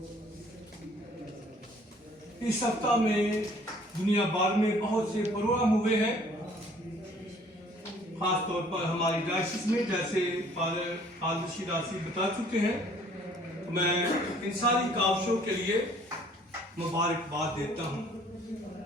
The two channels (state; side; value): normal; both; correlation 0.57